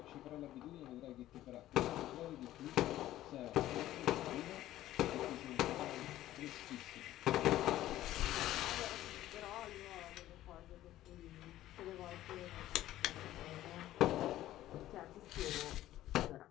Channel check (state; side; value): quieter; right; 14.1 dB